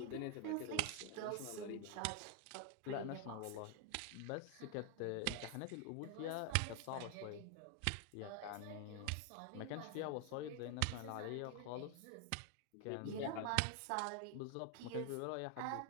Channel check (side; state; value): both; different; correlation 0.00